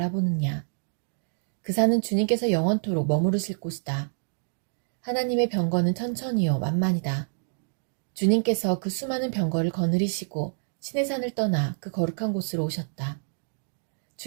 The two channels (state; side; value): silent; left; digital silence